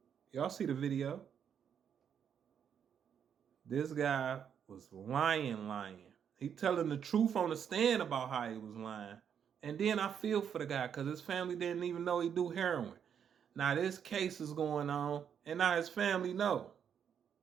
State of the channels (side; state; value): left; quieter; 8.1 dB